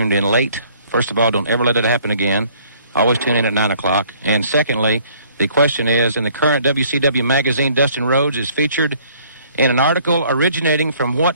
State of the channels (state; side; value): inverted; both; correlation -0.59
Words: in late, first of all, don't ever let it happen again. Always tune in at 9 o'clock. And secondly, the question is, in the current WCW magazine, Dustin Rhodes is featured in an article originating from what